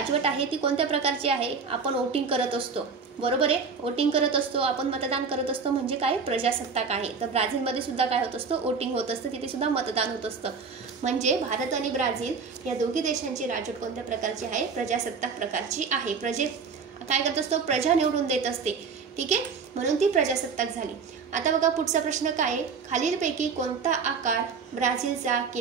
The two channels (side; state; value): left; quieter; 5.3 dB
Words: आहे ती कोणत्या प्रकारची आहे, आपण वोटिंग करत असतो, बरोबर आहे, वोटिंग करत असतो, आपण मतदान करत असतो, म्हणजे काय, प्रजासत्ताक आहे। तर ब्राझीलमध्ये सुद्धा काय होत असतं, वोटिंग होत असतं, तिथे सुद्धा मतदान होत असतं। म्हणजे भारत आणि ब्राझील या दोघी देशांची राजवट कोणत्या प्रकारची आहे, प्रजासत्ताक प्रकारची आहे। काय करत असतो, प्रजा निवडून देत असते। ठीक आहे, म्हणून ती प्रजासत्ताक झाली। आता बघा पुढचा प्रश्न काय आहे, खालीलपैकी कोणता आकार ब्राझीलचा